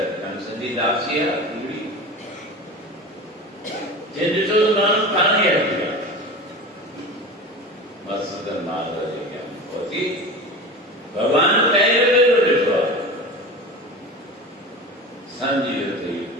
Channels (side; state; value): both; normal; correlation 0.32